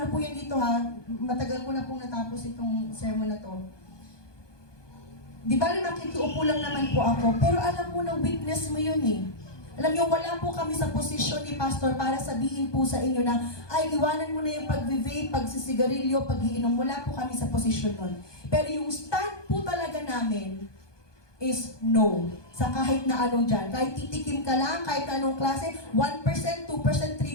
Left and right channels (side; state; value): right; late; 1.2 ms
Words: po yan dito ha, matagal ko na pong natapos itong sermon na to. Di ba makikiupo lang naman po ako, pero alam mo na weakness mo yun eh. Alam niyo, wala po kami sa posisyon ni Pastor para sabihin po sa inyo na, ay, iwanan mo na yung pag-vape, pagsisigarilyo, pag-iinom. Wala po kami sa posisyon nun. Pero yung stand po talaga namin is no. Sa kahit na anong dyan. Kahit titikim ka lang, kahit anong klase, 1%, 2%,